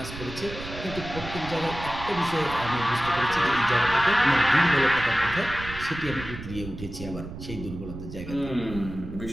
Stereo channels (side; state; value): right; noise; rumble, 11 dB below the sound